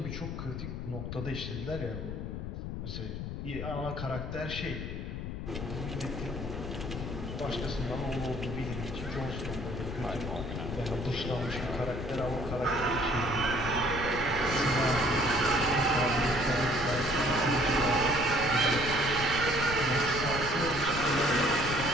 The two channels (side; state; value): left; noise; rumble, 6 dB below the sound